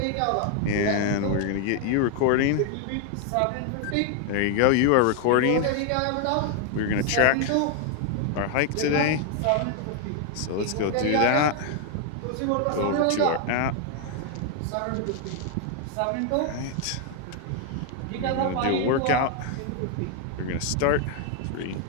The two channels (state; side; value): different; both; correlation 0.00